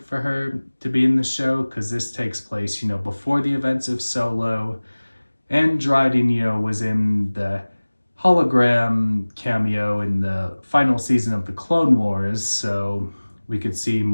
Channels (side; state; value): both; inverted; correlation -1.00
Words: for her to be in the show, because this takes place, before the events of Solo. And Dryden, was in the hologram cameo in the final season of the Clone Wars, so we could see